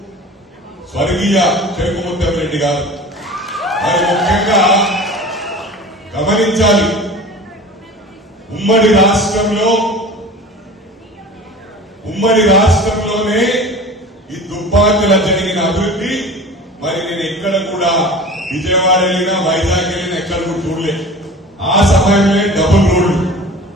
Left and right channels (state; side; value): normal; both; correlation 0.38